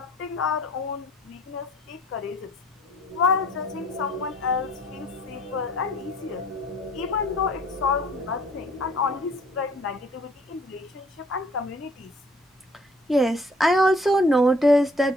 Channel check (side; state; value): both; normal; correlation 0.57